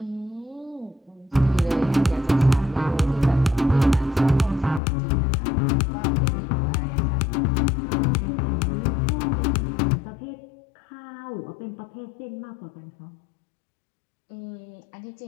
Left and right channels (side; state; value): right; drops out; at 4.8 s